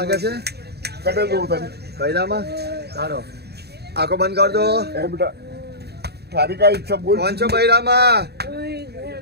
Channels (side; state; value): left; late; 0.47 ms